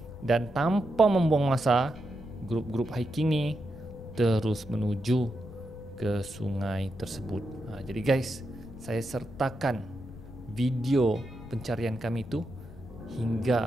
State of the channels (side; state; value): left; noise; rumble, 16 dB below the sound